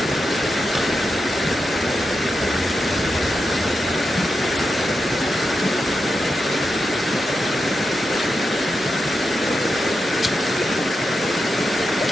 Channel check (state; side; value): normal; both; correlation 0.88